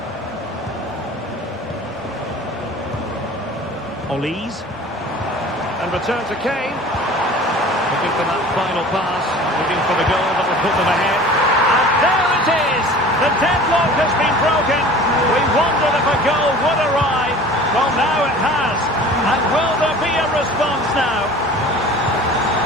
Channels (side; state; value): both; normal; correlation 0.43